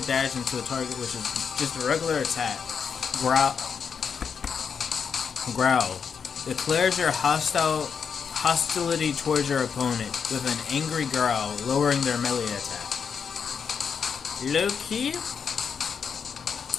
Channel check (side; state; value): right; quieter; 6.5 dB